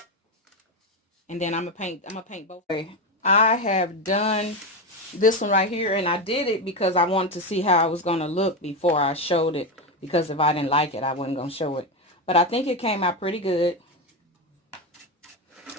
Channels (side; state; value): both; normal; correlation 0.13